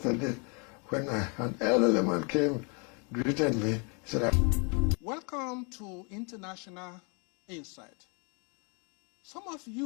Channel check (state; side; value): quieter; right; 34.9 dB